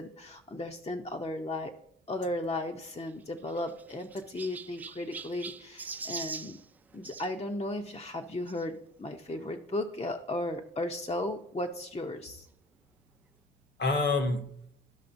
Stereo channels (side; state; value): both; normal; correlation 0.47